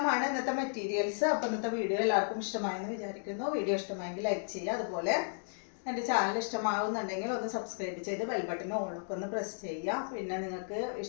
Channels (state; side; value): silent; right; digital silence